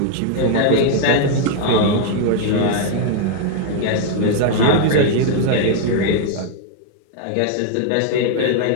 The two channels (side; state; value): both; different; correlation 0.00